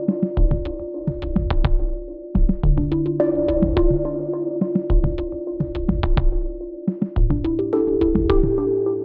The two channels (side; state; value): both; identical; correlation 1.00